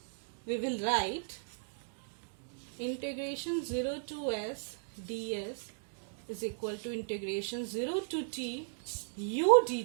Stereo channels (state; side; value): silent; left; digital silence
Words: we will write integration 0 to s ds is equal to integration 0 to t u